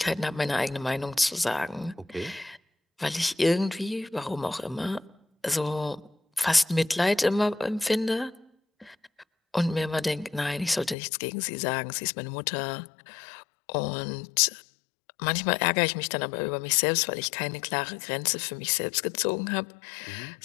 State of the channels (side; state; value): right; drops out; at 11.0 s